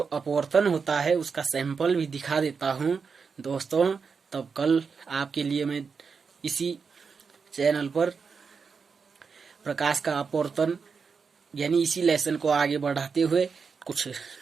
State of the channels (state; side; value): quieter; left; 5.5 dB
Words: अपवर्तन होता है उसका सैंपल भी दिखा देता हूं दोस्तों। तब कल आपके लिए मैं इसी चैनल पर प्रकाश का अपवर्तन, यानी इसी लेसन को आगे बढ़ाते हुए कुछ